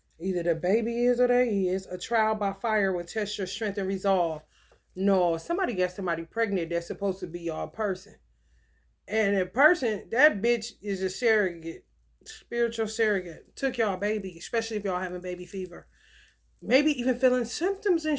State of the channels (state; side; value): identical; both; correlation 1.00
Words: Either the baby is or they is. A trial by fire will test your strength and resolve. No, somebody got somebody pregnant that's supposed to be your person. And the person, that bitch is a surrogate, spiritual surrogate. Took y'all baby, especially if y'all having baby fever. Maybe even feeling symptoms and